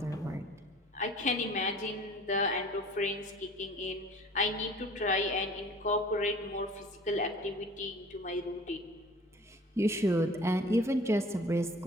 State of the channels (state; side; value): normal; both; correlation 0.47